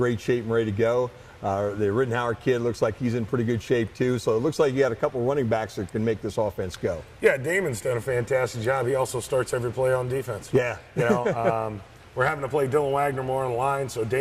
shape and ready to go. The Rittenhauer kid looks like he's in pretty good shape, too. So it looks like you got a couple running backs that can make this offense go. Yeah, Damon's done a fantastic job. He also starts every play on defense. Yeah. We're having to play Dylan Wagner more on the line, so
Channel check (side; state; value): both; identical; correlation 1.00